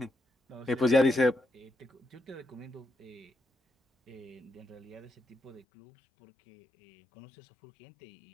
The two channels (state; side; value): drops out; right; at 5.7 s